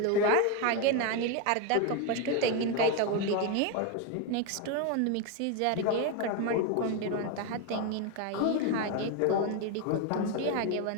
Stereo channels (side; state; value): both; different; correlation 0.02